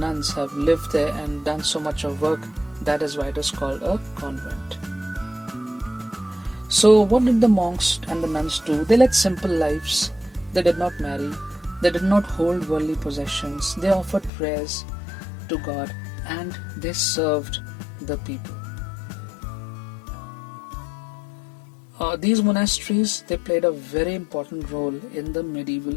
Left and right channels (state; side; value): drops out; right; at 14.3 s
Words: have lived there and done so much of work. That is why it is called a convent. So what did the monks and the nuns do? They led simple lives. They did not marry. They did not hold worldly possessions. They offered prayers to God, and they served the people. These monasteries, they played a very important role in the medieval